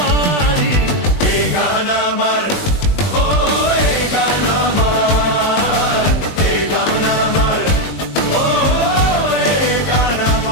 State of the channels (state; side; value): late; right; 20 ms